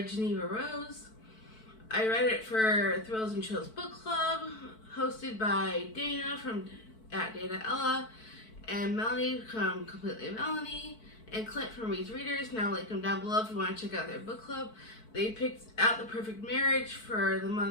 Jeneva Rose. I read it for Thrills and Chills Book Club, hosted by Dana from Dana Ella, and Melanie from Completely Melanie, and Clint from Reed's Readers. Now I'll link them down below if you want to check out their book club. They picked out The Perfect Marriage for the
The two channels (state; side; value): late; right; 4.5 ms